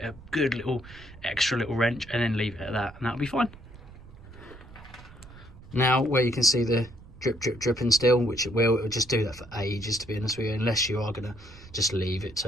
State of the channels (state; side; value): noise; right; rumble, 19 dB below the sound